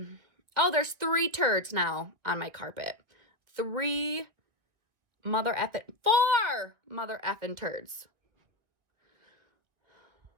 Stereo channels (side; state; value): left; late; 1.9 ms